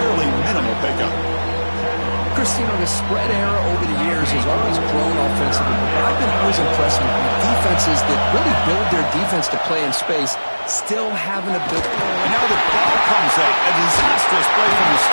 minimal pickup. Chris, you know, the spread era over the years has always grown offensively. I've been always impressed with defenses that really build their defense to play in space, still having a bit. And now the ball comes up. A disastrous play from the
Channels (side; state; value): both; inverted; correlation -1.00